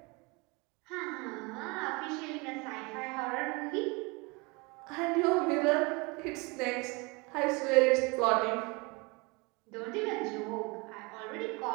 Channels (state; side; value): quieter; left; 27.3 dB